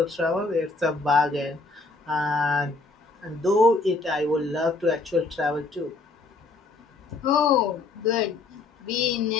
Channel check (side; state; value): right; quieter; 3.7 dB